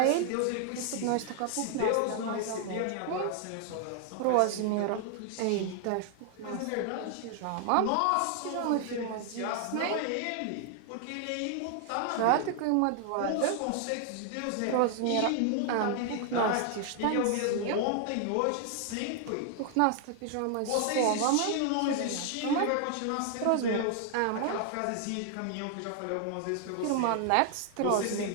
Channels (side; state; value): both; different; correlation 0.00